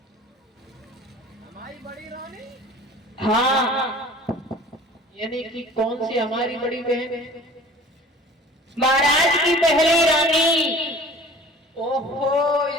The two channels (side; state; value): both; normal; correlation 0.45